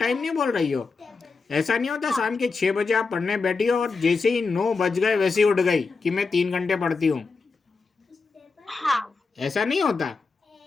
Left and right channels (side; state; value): right; quieter; 4.4 dB